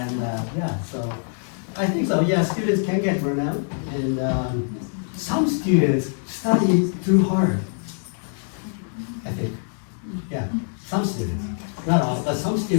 And yeah, so I think so. Yeah, students can get burnout, and some students study too hard. I think, yeah, some students, not all, but some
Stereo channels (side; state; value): right; silent; 58 dB below the other